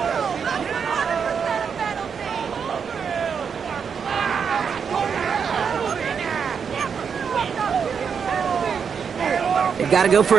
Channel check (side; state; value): left; quieter; 6.6 dB